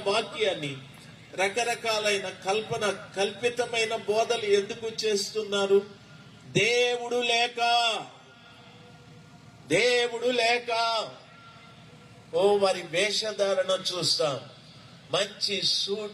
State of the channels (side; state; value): both; identical; correlation 1.00